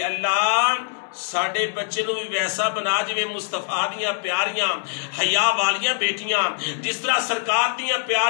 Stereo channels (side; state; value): right; silent; 63 dB below the other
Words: اللہ ساڑھے بچے نو بھی ویسا بنا جوے مصطفیٰ دیاں پیاریاں حیا والیاں بیٹیاں، جس طرح سرکار دیاں